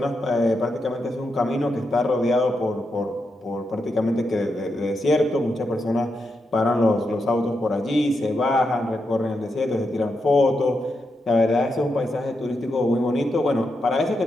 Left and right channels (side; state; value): both; normal; correlation 0.84